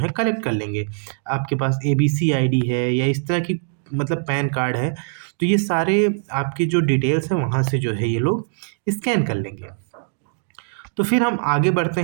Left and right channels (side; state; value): left; silent; digital silence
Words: कलेक्ट कर लेंगे। आपके पास ABC आईडी है या इस तरह की मतलब पैन कार्ड है तो ये सारे आपकी जो डिटेल्स हैं वहाँ से जो है ये लोग स्कैन कर लेंगे। तो फिर हम आगे बढ़ते